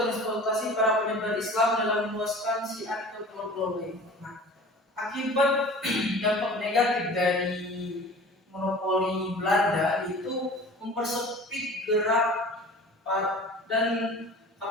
para penyebar Islam dalam meluaskan syiar ke pulau-pulau lain. Nah, akibat dampak negatif dari monopoli Belanda itu mempersempit gerak dan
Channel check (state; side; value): normal; both; correlation 0.42